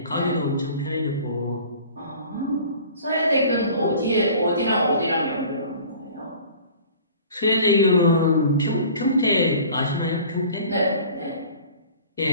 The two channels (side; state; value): both; inverted; correlation -0.45